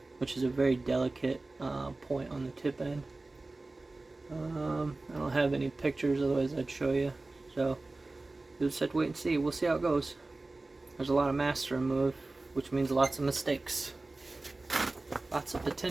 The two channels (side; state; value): left; quieter; 3.2 dB